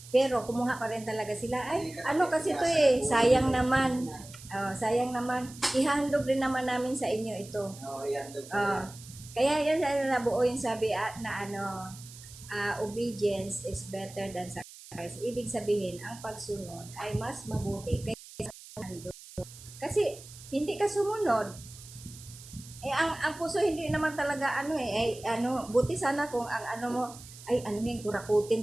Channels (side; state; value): right; noise; hiss, 17 dB below the sound